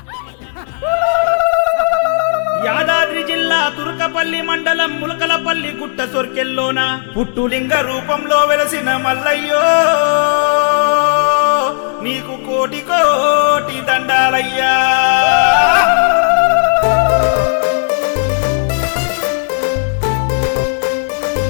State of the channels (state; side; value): silent; right; digital silence